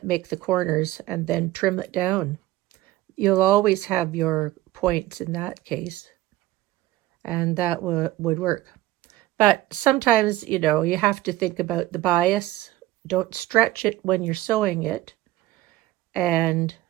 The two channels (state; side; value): quieter; left; 16.3 dB